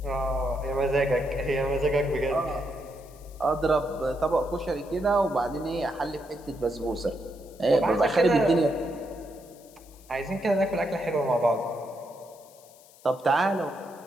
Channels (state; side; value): noise; left; hiss, 25 dB below the sound